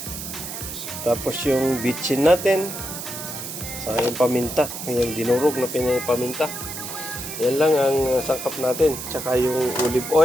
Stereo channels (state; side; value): noise; right; hiss, 8 dB below the sound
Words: Tapos yung bitchin natin. Saka yung paminta. Yung dinurog na pinapaminta. Yan lang ang sangkap natin. Tsaka yung olive